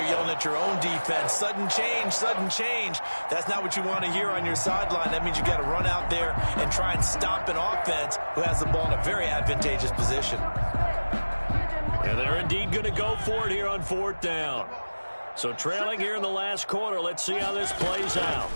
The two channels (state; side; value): inverted; both; correlation -1.00